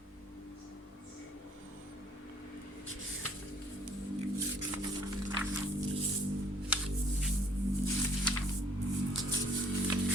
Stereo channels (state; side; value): normal; both; correlation 0.61